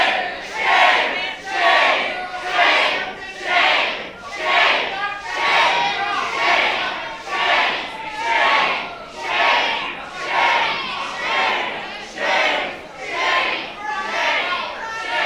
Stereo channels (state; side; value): identical; both; correlation 1.00